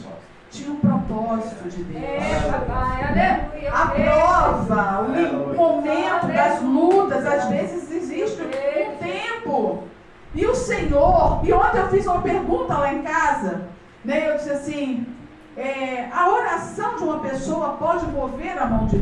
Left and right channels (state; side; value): identical; both; correlation 1.00